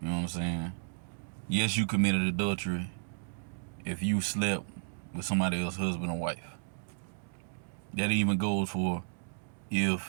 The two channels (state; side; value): silent; left; digital silence